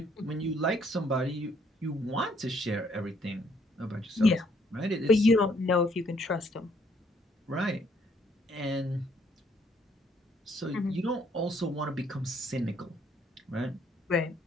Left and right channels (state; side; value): normal; both; correlation 0.67